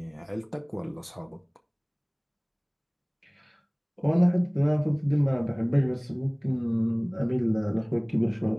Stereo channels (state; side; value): identical; both; correlation 1.00